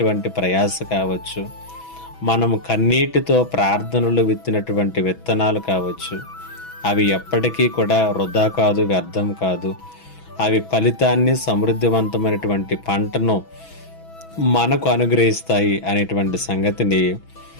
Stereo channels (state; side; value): late; right; 6.1 ms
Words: ప్రయాస కావచ్చు, మనము కన్నీటితో ప్రార్థనలు విత్తినటువంటి విత్తనాలు కావచ్చు, అవి ఎప్పటికీ కూడా వృధా కాదు, వ్యర్థం కాదు. అవి ఫలితాన్ని, సమృద్ధివంతమైనటువంటి పంటను మనకు అనుగ్రహిస్తాయి అనేటువంటి సంగతిని